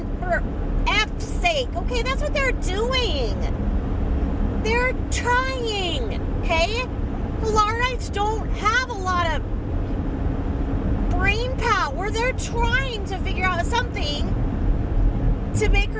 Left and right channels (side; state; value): both; identical; correlation 1.00